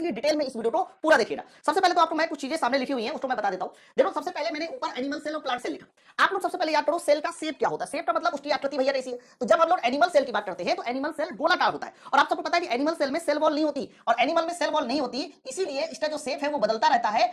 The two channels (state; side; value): identical; both; correlation 1.00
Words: डिटेल में इस वीडियो को पूरा देखिएगा। सबसे पहले तो आपको मैं कुछ चीजें सामने लिखी हुई हैं उसको मैं बता देता हूं। देखो सबसे पहले मैंने ऊपर एनिमल सेल और प्लांट सेल लिखा। आप लोग सबसे पहले याद करो सेल का शेप क्या होता है। शेप का मतलब उसकी आकृति भैया ऐसी है। तो जब हम लोग एनिमल सेल की बात करते हैं तो एनिमल सेल गोलाकार होता है और आप सबको पता है कि एनिमल सेल में सेल वॉल नहीं होती और एनिमल में सेल वॉल नहीं होती, इसीलिए इसका जो शेप है वो बदलता रहता है,